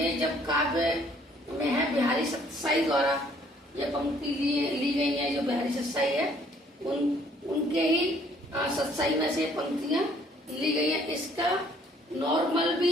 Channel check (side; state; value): both; normal; correlation 0.61